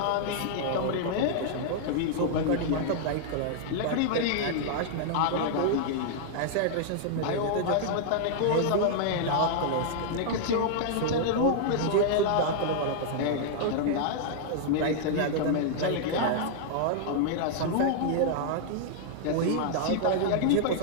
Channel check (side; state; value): both; different; correlation -0.01